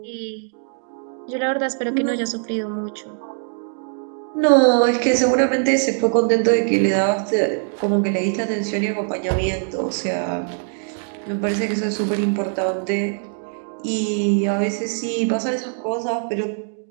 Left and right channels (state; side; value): silent; left; 64 dB below the other